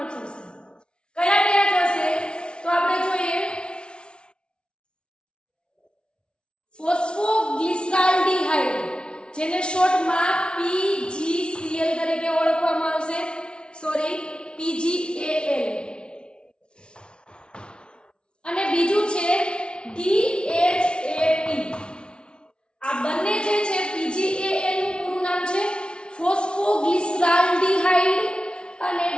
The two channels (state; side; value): late; right; 0.057 ms